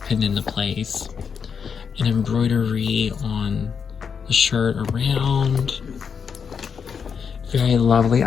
pinned into place. And embroidery on the shirt around. Very lovely.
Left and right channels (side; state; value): right; quieter; 6.5 dB